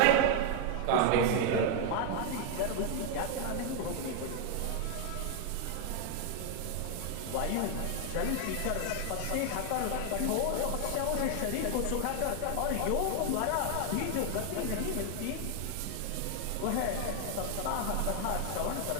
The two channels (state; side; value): different; both; correlation 0.00